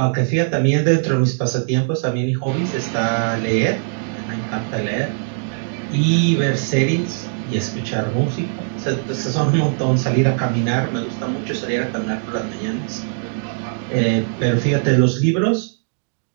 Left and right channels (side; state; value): left; silent; digital silence